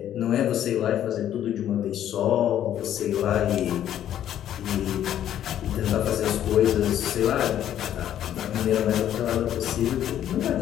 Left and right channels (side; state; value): right; quieter; 11.0 dB